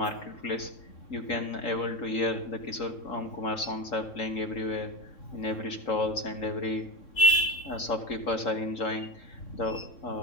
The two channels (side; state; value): right; late; 3.6 ms